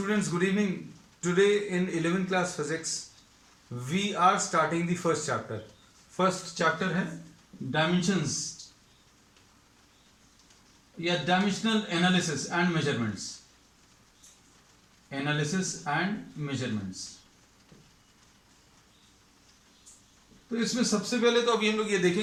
good evening. Today in 11th class physics, we are starting the first chapter. First chapter है dimensions या dimensional analysis and measurements. Analysis and measurements. तो इसमें सबसे पहले तो अभी हम लोग ये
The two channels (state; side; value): identical; both; correlation 1.00